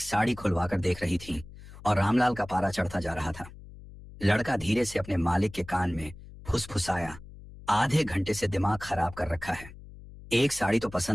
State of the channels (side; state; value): left; noise; hum, 17 dB below the sound